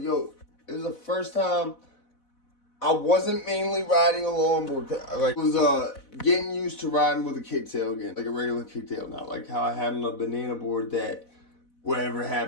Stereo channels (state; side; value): late; right; 4.0 ms